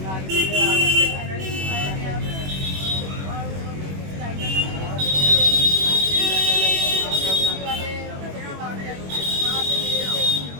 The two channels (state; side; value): late; left; 21 ms